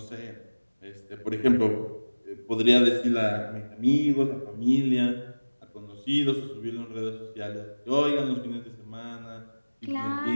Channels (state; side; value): inverted; both; correlation -1.00